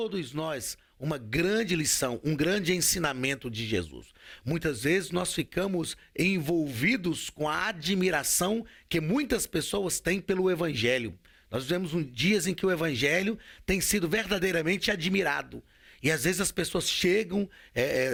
nós uma grande lição, um grande ensinamento de Jesus. Muitas vezes nós ficamos envolvidos com a admiração que muitas pessoas têm pelo Evangelho. Nós vivemos dias em que o Evangelho tem sido verdadeiramente admirado. E às vezes as pessoas chegam,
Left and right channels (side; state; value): both; identical; correlation 1.00